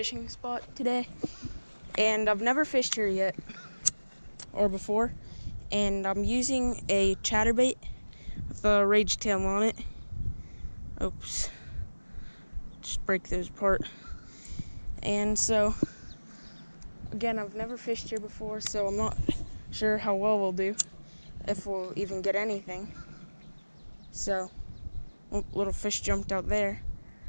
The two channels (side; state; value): both; inverted; correlation -1.00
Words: spot today, and I've never fished here yet, or before, and I'm using a chatterbait with a rage tail on it. Oops. Just break those apart. And so, again, I've never fished here before, so I'm not sure how well we'll do, if we'll even get anything. So, oh, little fish jumped out there.